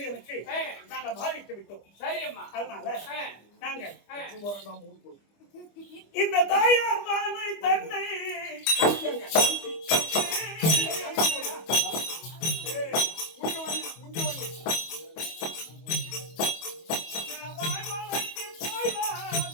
நாங்கள் மாலையிட்டு விட்டோம். சரியம்மா. அதனால நாங்க இந்த தாயார் மாலை தன்னை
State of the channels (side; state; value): right; late; 25 ms